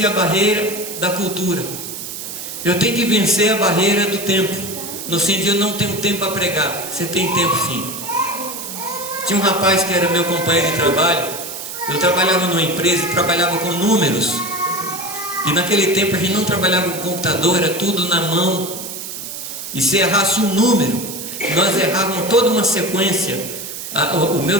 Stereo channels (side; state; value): right; noise; hiss, 8 dB below the sound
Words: a barreira da cultura. Eu tenho que vencer a barreira do tempo. No sentido, eu não tenho tempo para pregar. Você tem tempo sim. Tinha um rapaz que era meu companheiro de trabalho. Eu trabalhava numa empresa e trabalhava com números. E naquele tempo a gente não trabalhava com computador, era tudo na mão. E se errasse um número, nós errávamos toda uma sequência. O meu